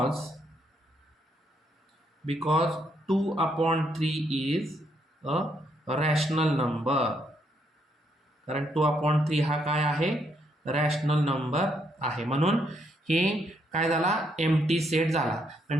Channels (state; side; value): normal; both; correlation 0.74